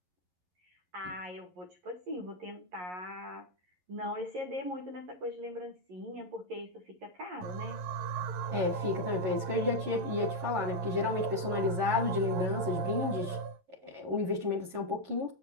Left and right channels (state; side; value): late; left; 11 ms